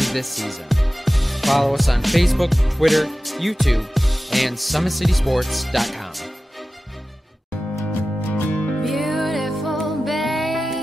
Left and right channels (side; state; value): both; normal; correlation 0.95